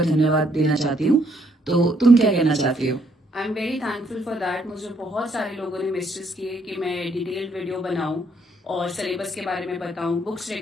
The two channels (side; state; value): both; normal; correlation 0.70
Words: धन्यवाद देना चाहती हूँ। तो तुम क्या कहना चाहती हो? I am very thankful for that. मुझे बहुत सारे लोगों ने मैसेज किए कि मैं डिटेल्ड वीडियो बनाऊं और सिलेबस के बारे में बताऊं, बुक्स